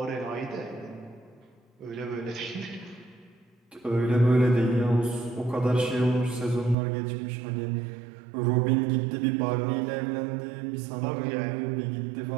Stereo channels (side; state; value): left; drops out; at 6.8 s